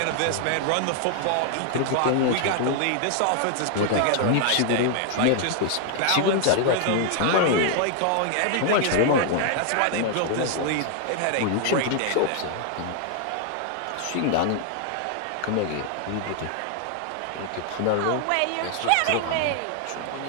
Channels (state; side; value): different; both; correlation 0.00